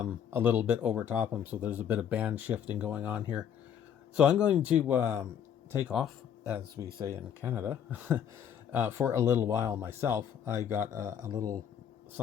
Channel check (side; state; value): right; quieter; 8.7 dB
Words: little bit over top him. So there's a bit of band shifting going on here. So I'm going to take off, as we say in Canada, for a little while myself. I got a little